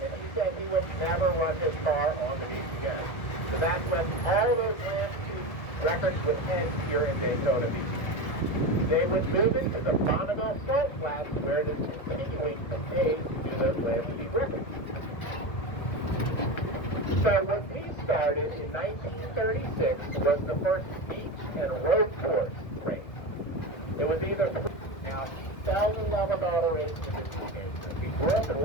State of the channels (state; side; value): late; right; 1.6 ms